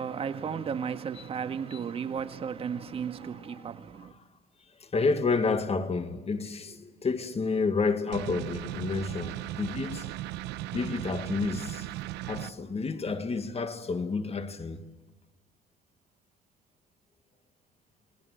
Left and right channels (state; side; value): normal; both; correlation 0.60